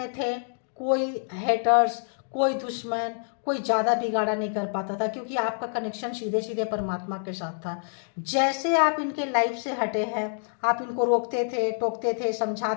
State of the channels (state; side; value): silent; right; digital silence